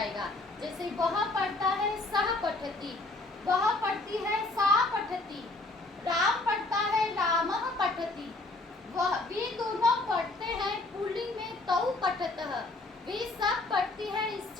जैसे वह पढ़ता है, सह पठति, वह पढ़ती है, सा पठति, राम पढ़ता है, रामः पठति, वह, वे दोनों पढ़ते हैं पुल्लिंग में, तौ पठतः, वे सब पढ़ती है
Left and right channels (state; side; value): quieter; right; 3.1 dB